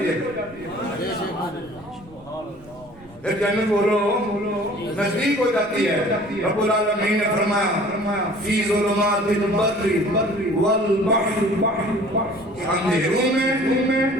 ہے. جنت بولو نزدیک ہو جاتی ہے. رب العالمین نے فرمایا فی ظلمات البر والبحر، اندھیروں میں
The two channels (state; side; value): noise; right; rumble, 24 dB below the sound